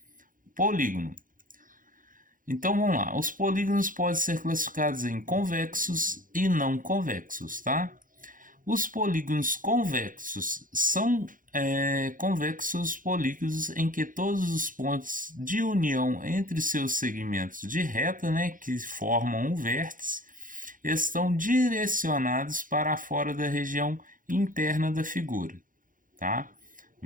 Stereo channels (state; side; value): late; left; 0.39 ms